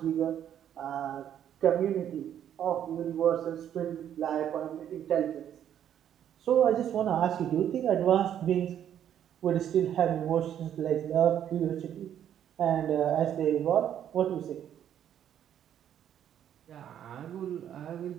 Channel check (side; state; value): left; quieter; 10.0 dB